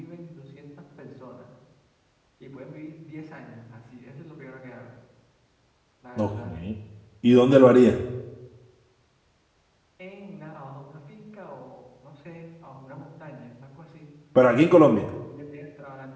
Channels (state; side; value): identical; both; correlation 1.00